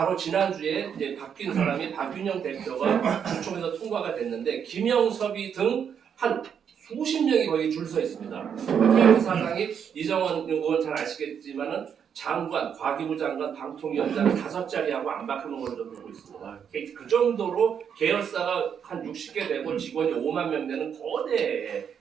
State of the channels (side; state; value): left; quieter; 7.7 dB